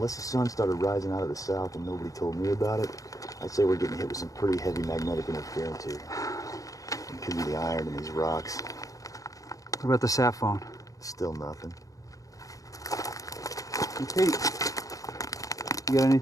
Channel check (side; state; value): right; late; 0.17 ms